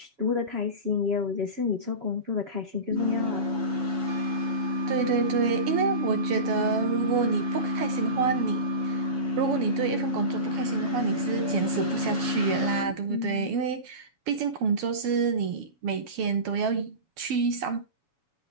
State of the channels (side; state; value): left; late; 7.1 ms